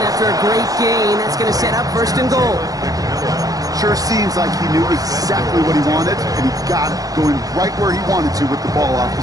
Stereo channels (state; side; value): late; left; 0.17 ms